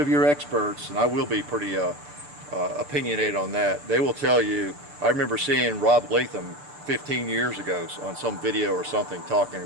your experts, and I will be pretty opinionated on that, they will tell you, I remember seeing Rob Latham 15 years ago on some video or something talking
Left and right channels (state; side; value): late; left; 6.7 ms